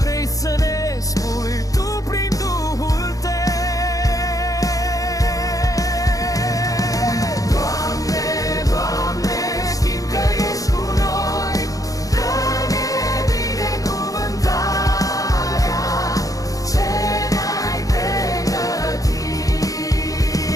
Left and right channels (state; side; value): late; right; 0.17 ms